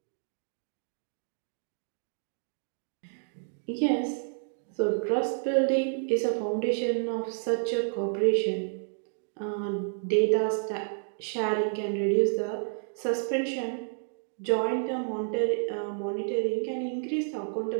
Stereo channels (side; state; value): left; silent; digital silence